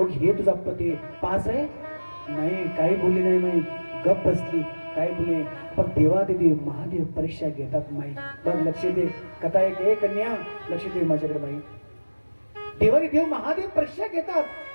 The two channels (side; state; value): both; inverted; correlation -1.00